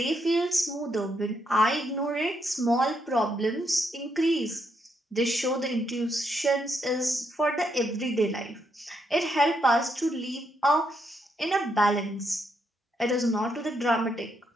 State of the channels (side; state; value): both; normal; correlation 0.78